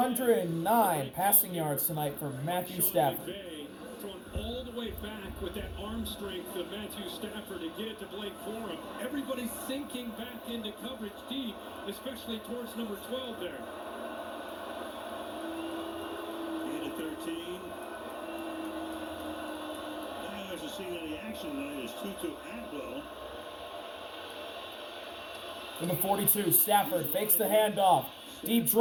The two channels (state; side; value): identical; both; correlation 1.00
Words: passing yards tonight for Matthew Stafford. Thrown all the way back with that arm strength of Matthew Stafford to get it to Blake Corum. Everybody's sinking back into coverage deep, especially towards number 12 there. Gain of 13. Now hasn't seen any action tonight is Tutu Atwell. In the 42, Stafford fakes the handoff. Deep